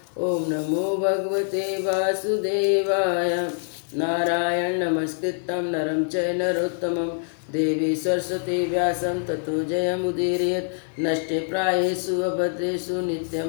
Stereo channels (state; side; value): silent; right; 62 dB below the other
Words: ओम नमो भगवते वासुदेवाय। नारायण नमस्कृतं नरं चैव नरोत्तमं देवी सरस्वती व्यासं ततो जयमुदीरयेत्। नष्टे प्रायेषु अभद्रेषु